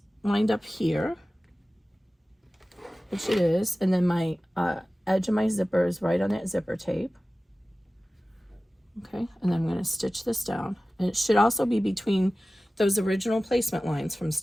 lined up here, which it is, and then my edge of my zipper is right on that zipper tape. Okay, and then I'm going to stitch this down, and it should also be between those original placement lines from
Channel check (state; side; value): normal; both; correlation 0.96